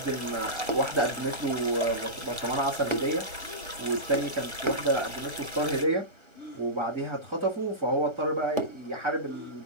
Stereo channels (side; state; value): left; late; 1.4 ms